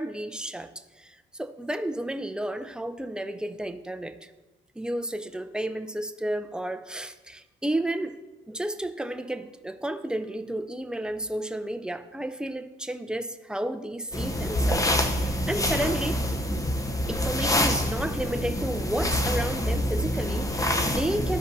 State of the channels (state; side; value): normal; both; correlation 0.68